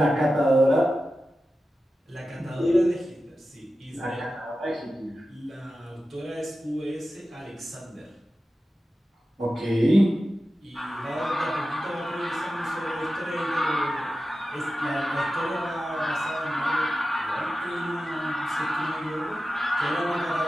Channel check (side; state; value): both; normal; correlation 0.93